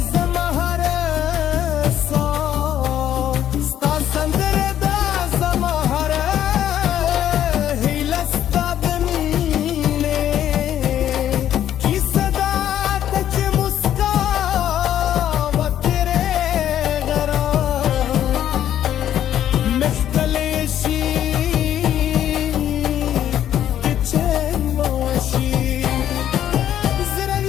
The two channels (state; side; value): quieter; right; 11.0 dB